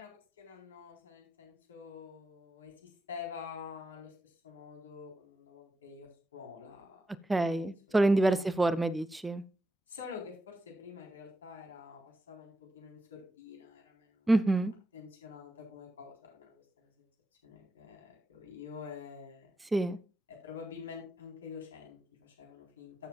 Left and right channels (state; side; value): normal; both; correlation 0.88